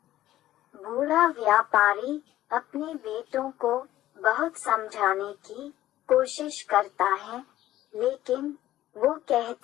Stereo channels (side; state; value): right; quieter; 14.1 dB